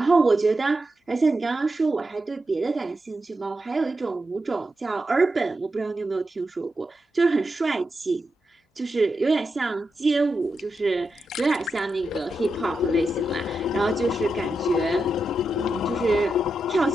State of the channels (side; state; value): both; normal; correlation 0.88